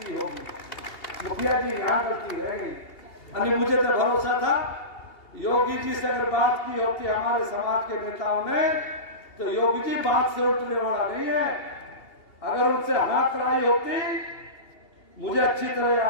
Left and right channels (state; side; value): late; right; 2.8 ms